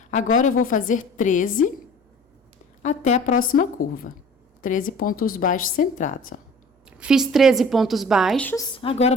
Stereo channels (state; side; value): normal; both; correlation 0.46